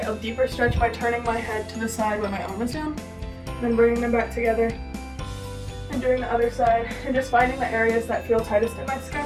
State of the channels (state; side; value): identical; both; correlation 1.00